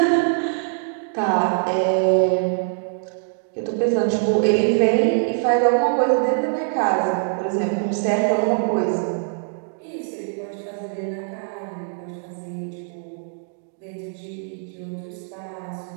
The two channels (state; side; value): silent; left; digital silence